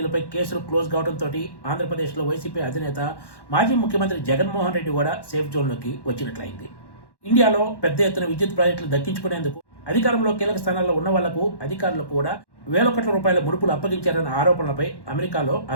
కేసులు క్లోజ్ కావడంతో ఆంధ్రప్రదేశ్లో వైసీపీ అధినేత మాజీ ముఖ్యమంత్రి జగన్మోహన్ రెడ్డి కూడా సేఫ్ జోన్లోకి వచ్చినట్లయింది. ఇండియాలో పెద్ద ఎత్తున విద్యుత్ ప్రాజెక్టులు దక్కించుకునేందుకు అధికారంలో కీలక స్థానాల్లో ఉన్న వాళ్లకు అధికారులు కూడా వేల కోట్ల రూపాయల ముడుపులు అప్పగించారన్న ఆరోపణలపై అమెరికాలో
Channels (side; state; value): right; late; 1.1 ms